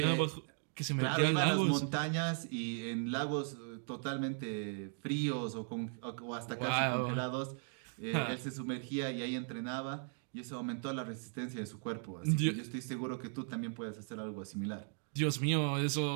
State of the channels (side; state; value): left; silent; 53 dB below the other